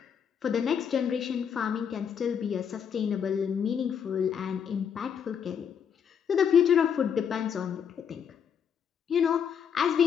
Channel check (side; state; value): right; quieter; 7.6 dB